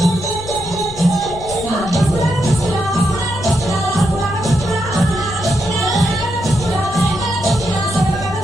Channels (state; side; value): noise; left; rumble, 14 dB below the sound